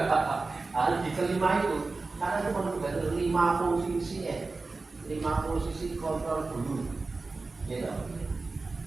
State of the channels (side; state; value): left; quieter; 3.7 dB